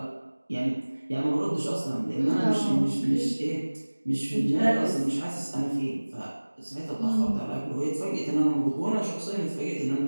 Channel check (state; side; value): inverted; both; correlation -1.00